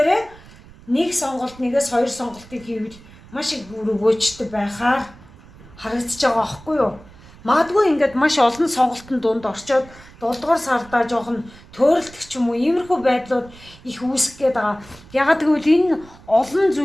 нэг сонголт нэгээс хоёр сонголтыг хийвэл маш их өгөөжтэй байхаар харагдаж байгаа аахгүй юу? Магадгүй ингээд маш олон сонголтын дунд орчоод 7 дугаар сардаа жоохон төөрөлдөх ч юм уу иймэрхүү байдлууд их үүсэх гээд байгаа. Ягаад гэвэл энэ олон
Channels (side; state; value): right; noise; rumble, 22 dB below the sound